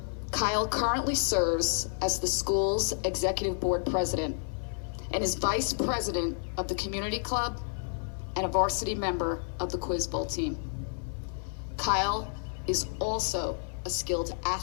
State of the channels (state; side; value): silent; right; digital silence